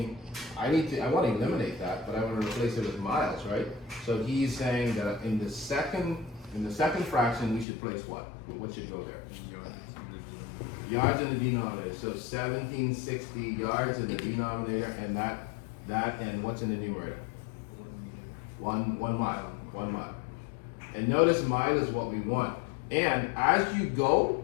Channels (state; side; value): drops out; right; at 7.7 s